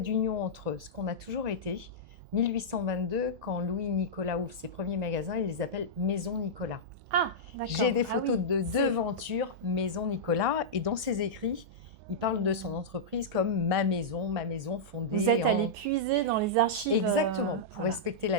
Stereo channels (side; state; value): both; normal; correlation -0.11